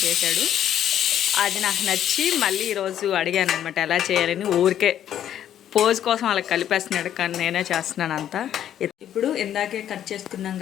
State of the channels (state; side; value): quieter; right; 10.6 dB